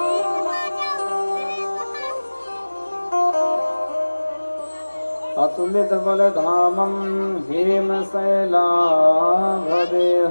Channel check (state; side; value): inverted; both; correlation -1.00